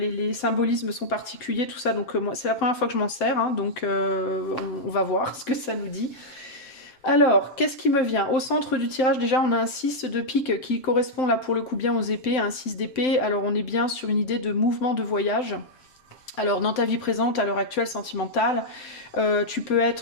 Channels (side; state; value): right; late; 7.8 ms